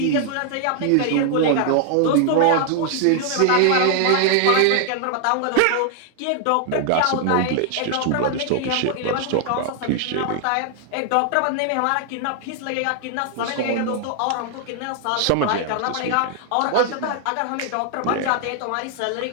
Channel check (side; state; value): both; different; correlation 0.00